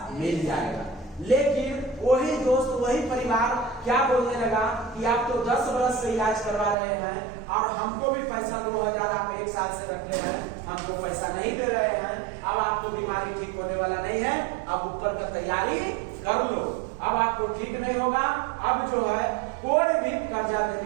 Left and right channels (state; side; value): drops out; left; at 6.8 s